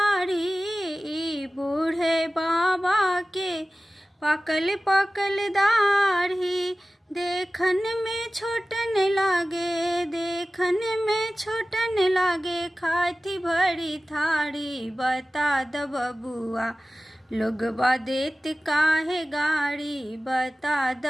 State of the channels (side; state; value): both; normal; correlation 0.96